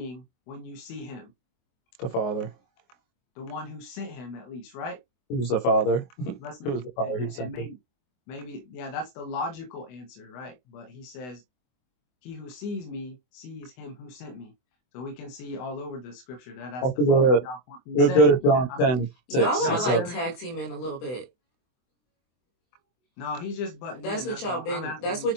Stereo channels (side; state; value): right; late; 24 ms